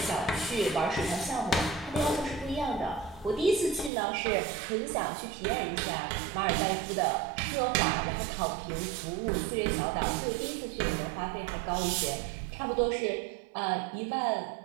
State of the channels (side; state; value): left; drops out; at 3.9 s